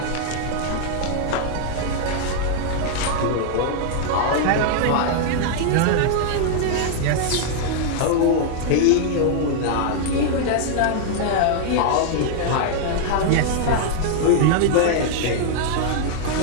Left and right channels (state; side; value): different; both; correlation -0.01